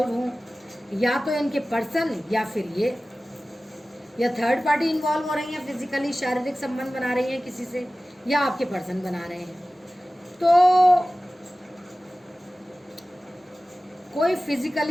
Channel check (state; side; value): normal; both; correlation 0.96